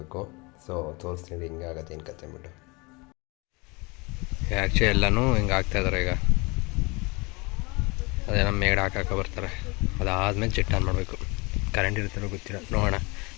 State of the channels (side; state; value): right; quieter; 27.1 dB